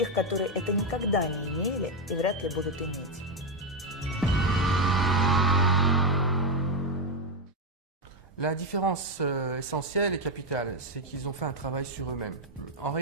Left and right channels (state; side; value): normal; both; correlation 0.06